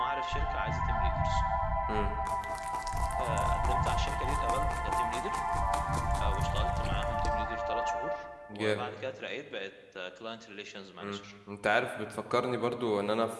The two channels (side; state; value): both; identical; correlation 1.00